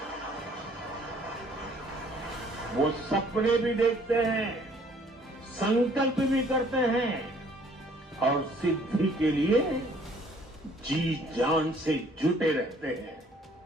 वो सपने भी देखते हैं, संकल्प भी करते हैं और सिद्धि के लिए जी जान से जुटे रहते हैं।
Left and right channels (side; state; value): both; normal; correlation 0.59